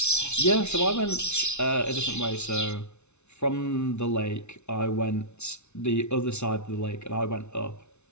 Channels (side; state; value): right; late; 0.82 ms